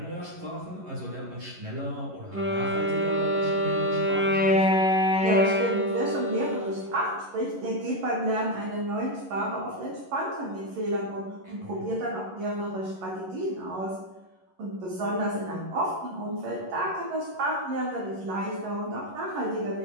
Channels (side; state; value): left; late; 11 ms